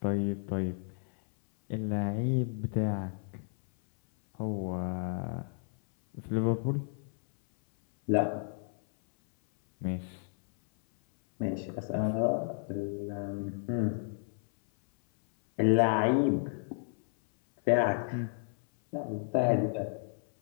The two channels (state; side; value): silent; right; 57 dB below the other